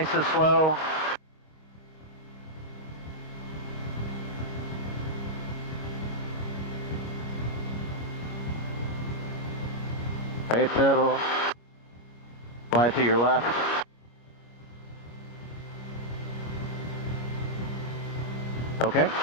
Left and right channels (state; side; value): late; right; 25 ms